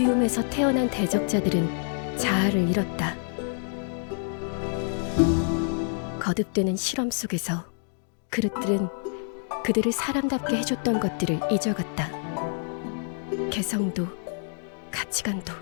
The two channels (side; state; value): right; silent; 58 dB below the other